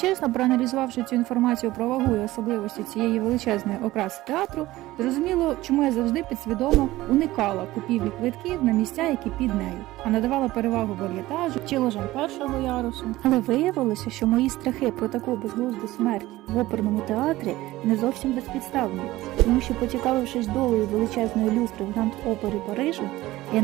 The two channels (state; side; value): quieter; left; 17.3 dB